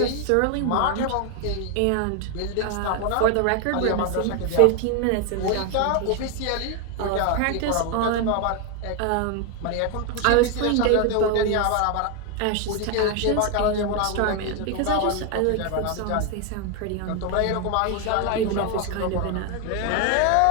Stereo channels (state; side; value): different; both; correlation 0.01